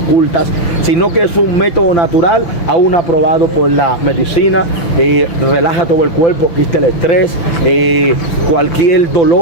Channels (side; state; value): right; late; 5.9 ms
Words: sino que es un método natural, aún aprobado por la medicina. Relaja todo el cuerpo, quita el estrés, cualquier